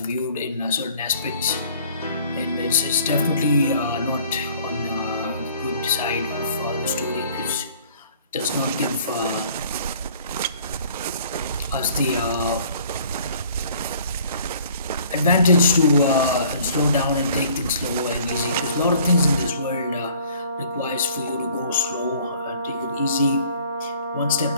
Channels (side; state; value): both; inverted; correlation -0.54